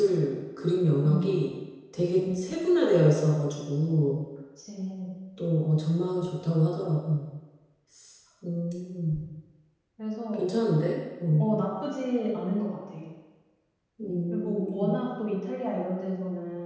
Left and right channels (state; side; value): identical; both; correlation 1.00